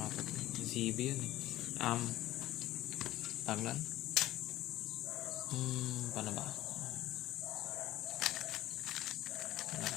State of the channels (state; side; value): quieter; right; 15.3 dB